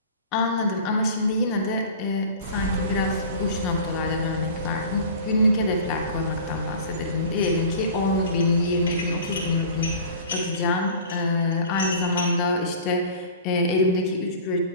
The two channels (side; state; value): both; inverted; correlation -0.40